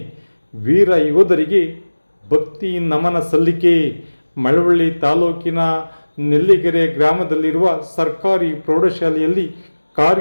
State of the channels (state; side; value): inverted; both; correlation -1.00